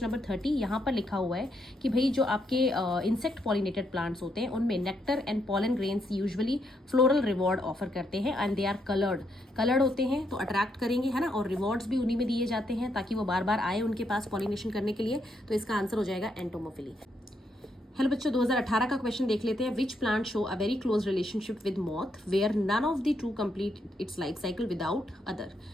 नंबर 30। यहाँ पर लिखा हुआ है कि भाई जो आपके इंसेक्ट पॉलिनेटेड प्लांट्स होते हैं उनमें nectar and pollen grains usually floral reward offer करते हैं एंड दे आर कलर्ड होते हैं, तो अट्रैक्ट करेंगे, है ना। और रिवॉर्ड्स भी उन्हीं में दिए जाते हैं ताकि वो बार बार आए उनके पास पॉलिनेशन करने के लिए। तो इसका आंसर हो जाएगा एंटोमोफिली। हेलो बच्चों, 2018 का क्वेश्चन देख लेते हैं। Which plant show a very close relationship with moth where none of the two complete its life cycle without other.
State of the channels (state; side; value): normal; both; correlation 0.77